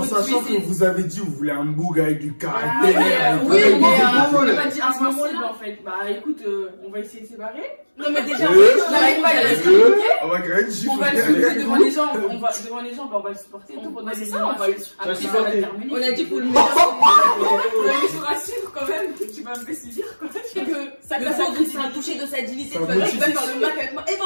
sachant que vous avez dit vous voulez un boug avec du Ah, caractère. oui, avec- mais Bon, on bon, n'a pas dit insensible en fait. Bah écoute, on va essayer de séparer. Non, mais déjà, J'arrive pas à la on va créer une gifle. On va le supporter devant les gens, devant les gens, bah, on va le supporter. On Pendant va les le gens, on va le après, supporter. ça va terminer. On a dit pour le meilleur. Ouais, mais je te rassure quand même, tu vas me faire subir quoi. C'est que ça Le peut centre, être un toucher de sa dignité. Ça Tu vas motive. faire le mac avec moi. Et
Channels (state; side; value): inverted; both; correlation -1.00